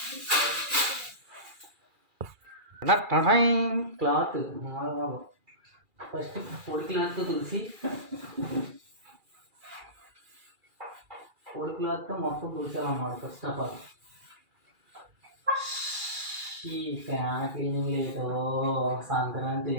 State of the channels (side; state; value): left; late; 2.4 ms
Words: క్లాత్ ఫస్ట్ పొడి క్లాత్తో మొత్తం తుడిచాలన్నమాట. ఫస్ట్ ఆఫ్ ఆల్ ఈ ఫ్యాన్ క్లీనింగ్ లేటో సంక్రాంతి